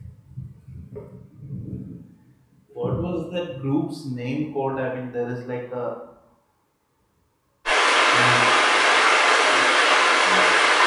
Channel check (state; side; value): identical; both; correlation 1.00